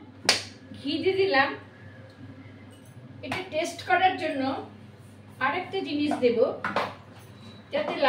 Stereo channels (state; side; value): identical; both; correlation 1.00